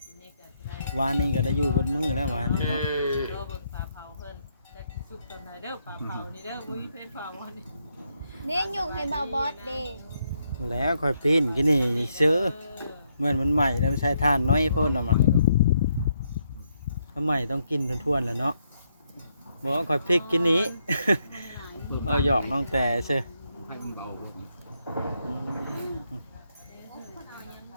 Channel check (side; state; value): both; inverted; correlation -0.77